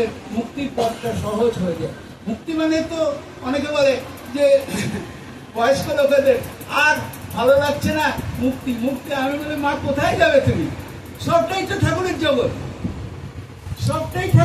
মুক্তির পথটা সহজ হয়ে যায়। মুক্তি মানে তো অনেকে বলে যে বয়স্ক লোকেদের আর ভালো লাগছে না, মুক্তি মুক্তি। আমি বলি, মা কোথায় যাবে তুমি? সবটাই তো ঠাকুরের জগৎ, সবটাই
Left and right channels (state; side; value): identical; both; correlation 1.00